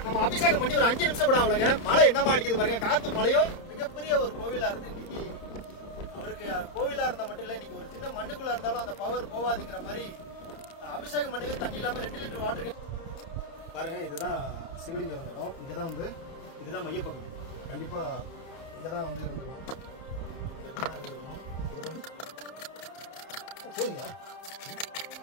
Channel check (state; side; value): late; right; 30 ms